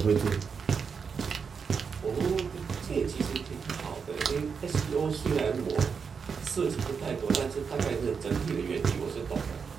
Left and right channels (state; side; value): quieter; left; 5.9 dB